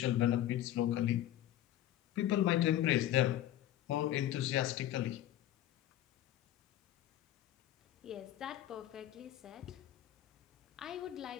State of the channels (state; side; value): quieter; right; 12.8 dB